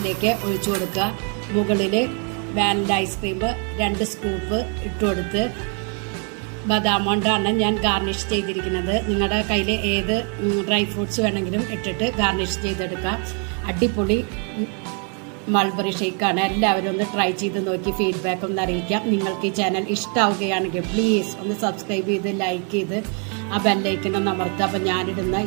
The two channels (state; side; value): quieter; left; 40.0 dB